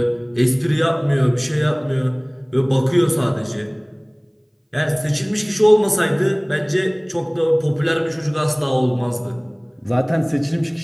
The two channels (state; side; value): identical; both; correlation 1.00